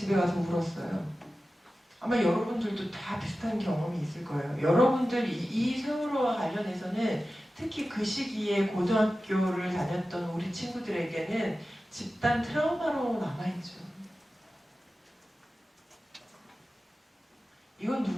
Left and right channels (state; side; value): normal; both; correlation 0.94